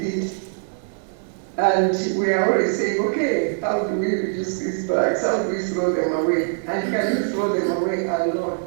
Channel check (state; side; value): silent; left; digital silence